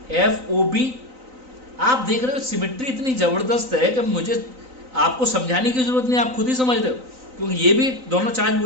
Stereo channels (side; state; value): left; late; 3.9 ms